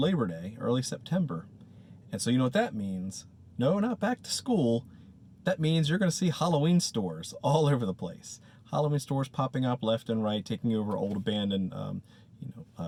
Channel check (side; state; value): both; identical; correlation 1.00